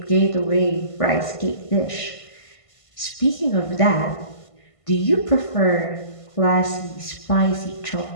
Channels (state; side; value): late; right; 1.5 ms